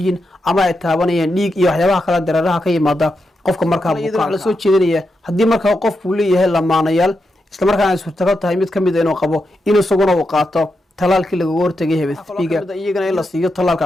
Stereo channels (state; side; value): normal; both; correlation 0.86